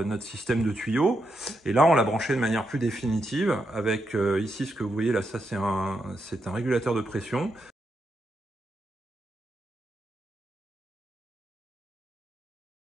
notre système de tuyaux. Et là on l'a branché de manière plus définitive avec ici ce que vous voyez là, ça c'est un régulateur de pression.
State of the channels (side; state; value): both; normal; correlation 0.83